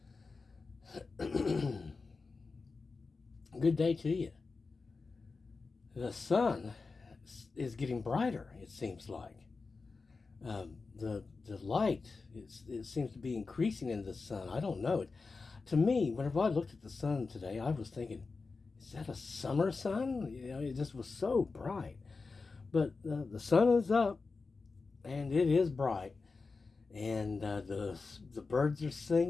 good day to you. The sun is getting brighter. It seems like the light it seems to be increasing in the sun. I don't know. To me, whenever I looked at the sun today, I was thinking, is that a summer sun? It just was so bright. But the sun is up and it is bright, and the birds are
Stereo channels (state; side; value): quieter; right; 4.2 dB